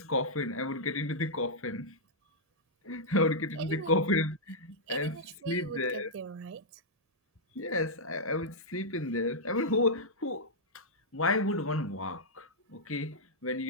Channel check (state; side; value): normal; both; correlation -0.08